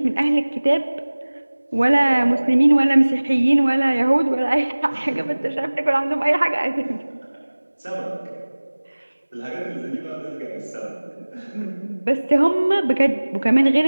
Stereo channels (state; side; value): inverted; both; correlation -1.00